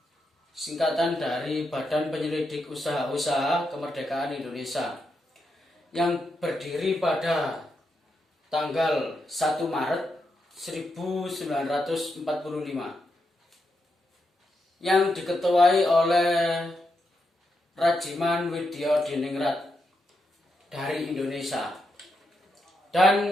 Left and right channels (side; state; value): both; normal; correlation 0.83